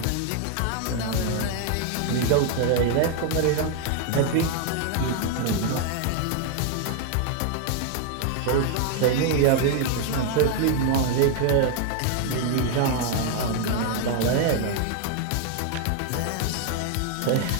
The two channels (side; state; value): both; different; correlation 0.00